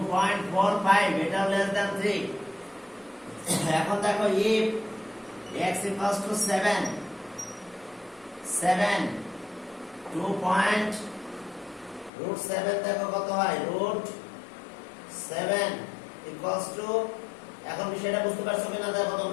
এটা লেস দ্যান 3। এখন দেখো if x equals to 7, 2.7 দেখো কত হয়, √7 equals to, এখন বিষয়টা বুঝতে পারছো কিনা দেখো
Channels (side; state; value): right; drops out; at 12.1 s